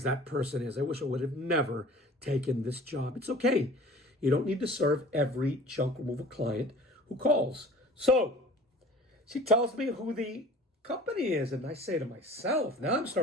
that person is. I wish I would have never taken this job. It's okay. You don't need to serve every junk removal client who calls. So she tells me who the company is, and I say to myself, now I'm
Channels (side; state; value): both; normal; correlation 0.45